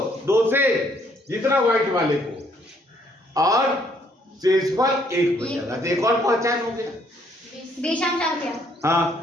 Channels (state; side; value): normal; both; correlation 0.67